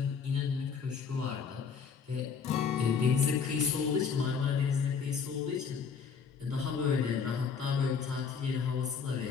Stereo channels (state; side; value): quieter; right; 6.1 dB